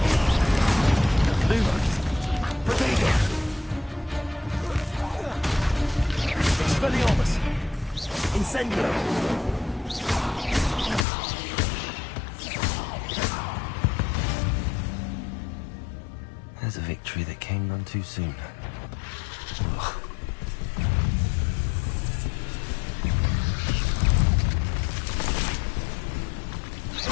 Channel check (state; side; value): drops out; right; at 11.1 s